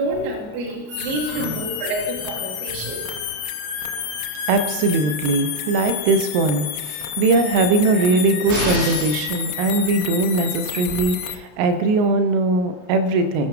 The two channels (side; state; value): left; late; 33 ms